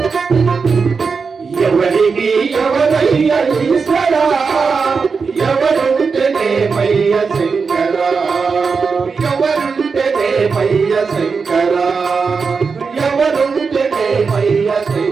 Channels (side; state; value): left; quieter; 5.1 dB